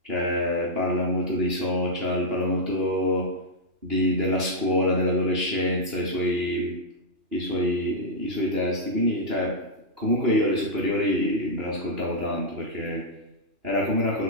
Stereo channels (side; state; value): left; late; 2.9 ms